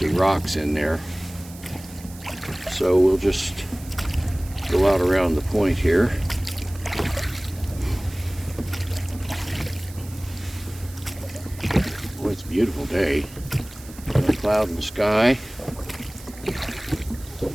rocks in there. So we'll just go out around the point here. Boy, it's a beautiful day. No cloud in the sky.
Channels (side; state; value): right; noise; hiss, 19 dB below the sound